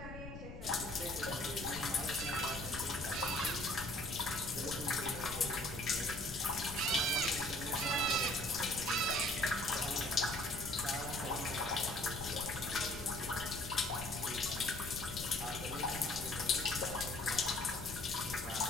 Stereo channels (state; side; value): noise; left; rumble, 10 dB below the sound